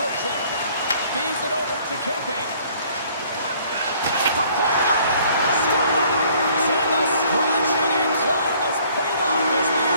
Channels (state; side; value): inverted; both; correlation -0.59